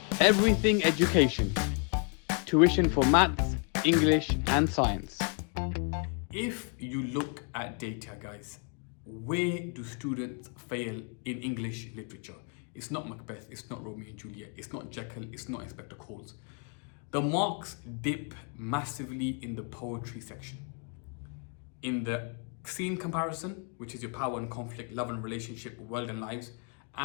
Everything education. Tuition for maths, English and science. If you look at data, guys, where do students fail in English literature? It's not Macbeth, it's not Romeo and Juliet, it's not Jekyll, it's not Inspector Calls. The marks dip massively in the poetry section. In the scene comparison, which is your power and conflict, love and relationship, world and lives,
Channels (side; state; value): right; quieter; 39.5 dB